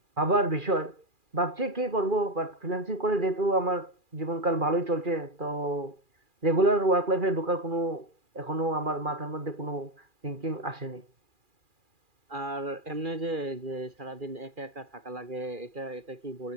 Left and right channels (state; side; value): late; left; 2.4 ms